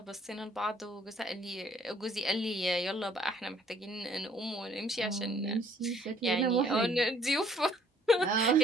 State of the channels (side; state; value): both; normal; correlation 0.61